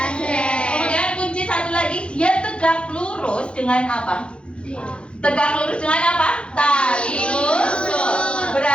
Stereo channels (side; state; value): right; late; 0.057 ms